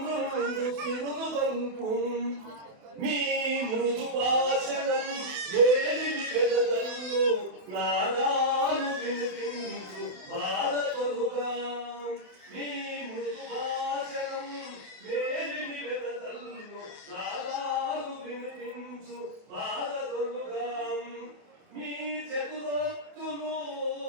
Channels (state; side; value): late; left; 28 ms